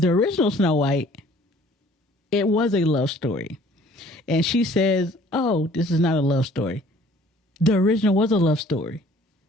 original Snow White, it was a love story. And she says, oh, this is not a love story. The original was a love story.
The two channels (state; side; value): normal; both; correlation 0.55